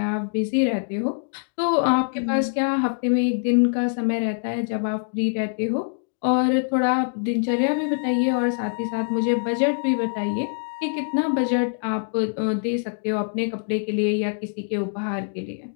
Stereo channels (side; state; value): right; silent; digital silence